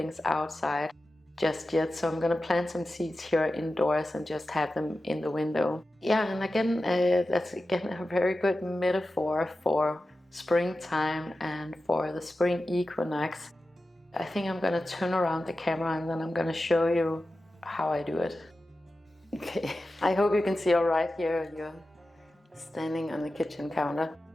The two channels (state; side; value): normal; both; correlation 0.93